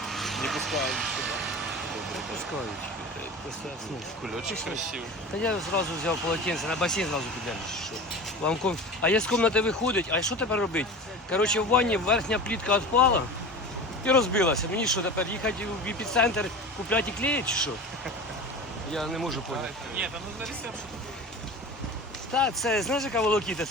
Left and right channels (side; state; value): both; normal; correlation 0.33